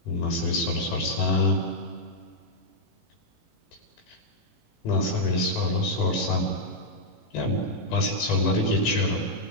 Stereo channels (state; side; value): late; right; 18 ms